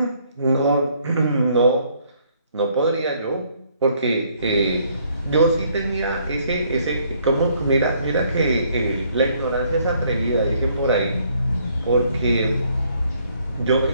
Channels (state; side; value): inverted; both; correlation -0.66